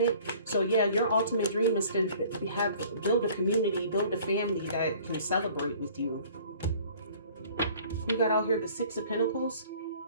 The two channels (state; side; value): inverted; both; correlation -0.51